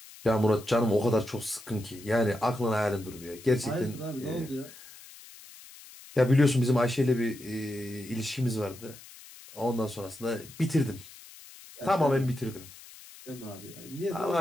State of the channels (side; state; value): left; noise; hiss, 19 dB below the sound